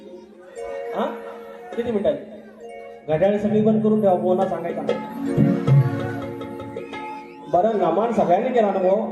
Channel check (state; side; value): identical; both; correlation 1.00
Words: हा किती मिनिटं आहेत? घड्याळ सगळी बंद करून ठेवा. बोना सांगायचा बरं नमान सगळ्यांनी केला ना